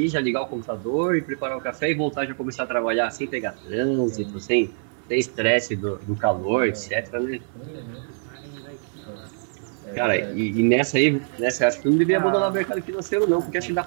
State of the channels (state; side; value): silent; left; digital silence